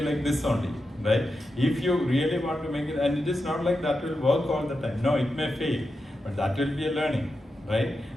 like this only, right? If you really want to make it, and it is not like that will work all the time. No, it may fail, but that will be a learning, right?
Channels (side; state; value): both; normal; correlation 0.89